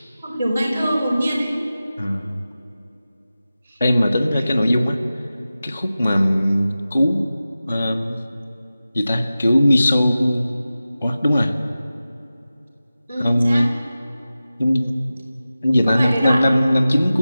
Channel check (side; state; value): both; inverted; correlation -0.95